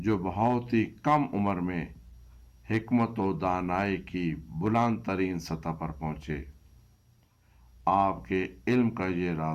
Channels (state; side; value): identical; both; correlation 1.00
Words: بہت ہی کم عمر میں حکمت و دانائی کی بلند ترین سطح پر پہنچے۔ آپ کے علم کا یہ